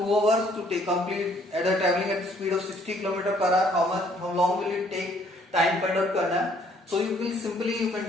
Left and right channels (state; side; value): normal; both; correlation 0.63